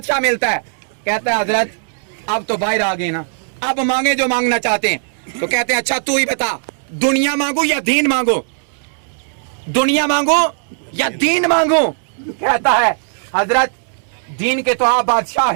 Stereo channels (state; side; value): silent; left; digital silence